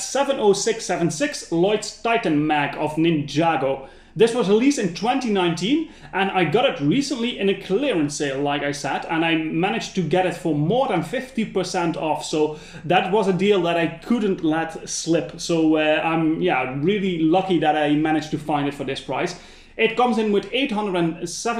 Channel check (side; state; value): both; identical; correlation 1.00